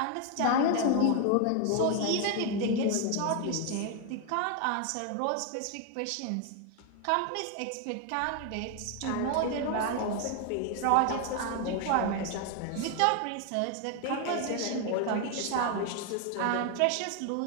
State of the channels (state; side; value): different; both; correlation 0.01